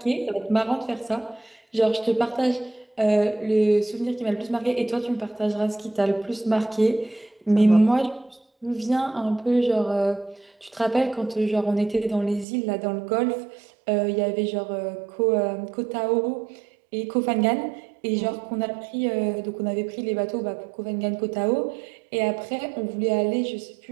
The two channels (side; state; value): left; drops out; at 12.5 s